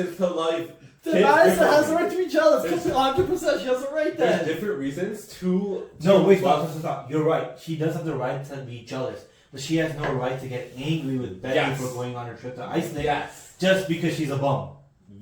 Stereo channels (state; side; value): identical; both; correlation 1.00